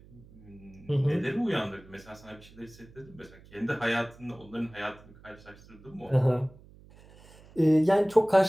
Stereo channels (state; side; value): noise; right; hum, 23 dB below the sound